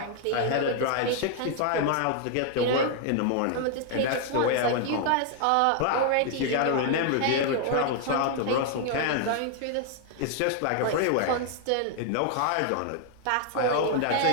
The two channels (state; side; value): different; both; correlation 0.00